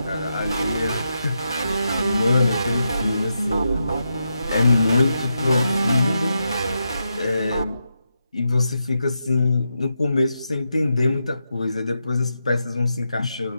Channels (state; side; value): inverted; both; correlation -0.86